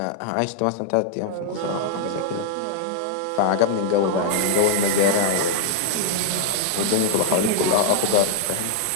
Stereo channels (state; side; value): different; both; correlation 0.00